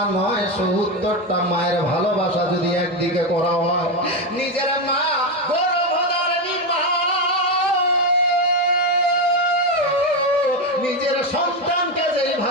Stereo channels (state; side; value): normal; both; correlation 0.11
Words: নয়, ৭০টা মায়ের ভালোবাসা যদি একদিকে করা হয়, নিজের মা গর্ভধারিণী মা নিজের সন্তানকে